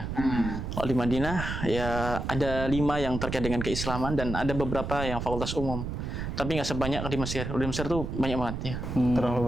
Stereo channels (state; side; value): noise; right; rumble, 5 dB below the sound